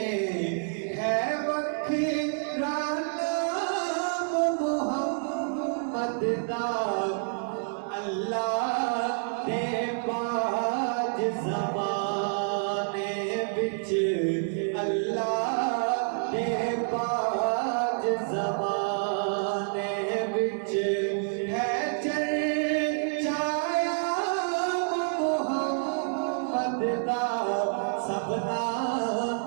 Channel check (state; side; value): silent; left; 59 dB below the other